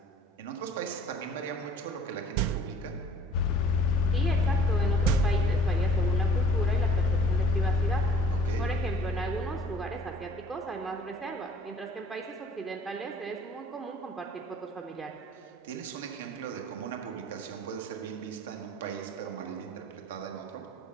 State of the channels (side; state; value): both; normal; correlation 0.51